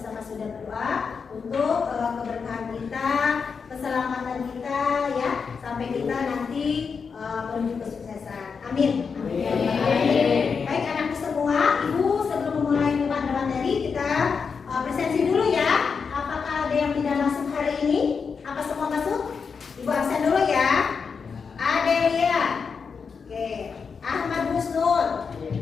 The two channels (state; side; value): quieter; right; 5.7 dB